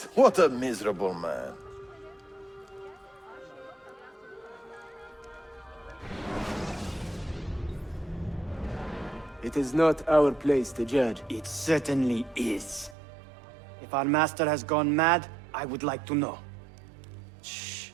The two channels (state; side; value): drops out; left; at 13.0 s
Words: what a miserable man. It is not our place to judge. It certainly is. If our master has gone mad, I would like to know. Shh.